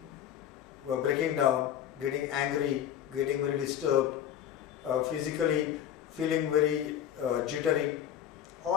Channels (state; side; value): quieter; right; 10.3 dB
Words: were breaking down, getting angry, getting very disturbed, physically feeling very jittery,